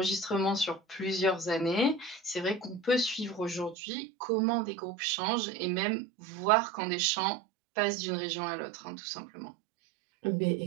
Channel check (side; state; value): left; drops out; at 3.8 s